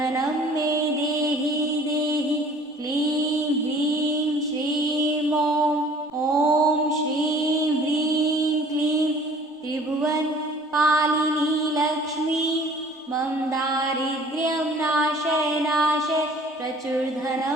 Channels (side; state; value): both; normal; correlation 0.51